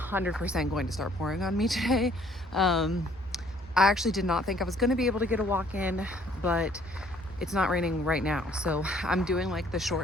going to start pouring on me today. I actually did not think I was going to be able to get a walk in, but it's not raining right now. So I'm doing like the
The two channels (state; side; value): normal; both; correlation 0.61